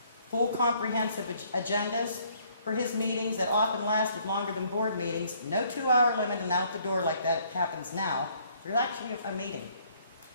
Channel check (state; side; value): inverted; both; correlation -0.64